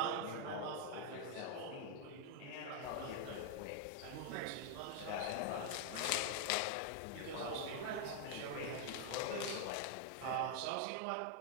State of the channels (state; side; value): different; both; correlation 0.00